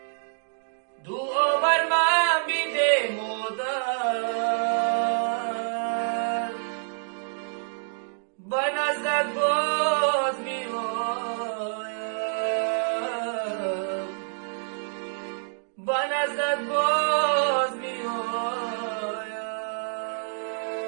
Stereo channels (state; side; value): silent; left; digital silence